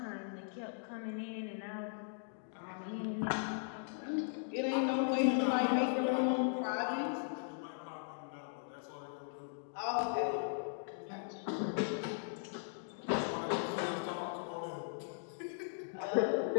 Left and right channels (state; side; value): silent; right; digital silence